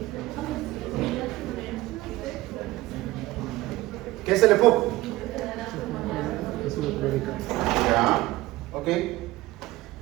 ¿Qué es el EPOC? Ya, ok.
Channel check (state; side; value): quieter; left; 18.3 dB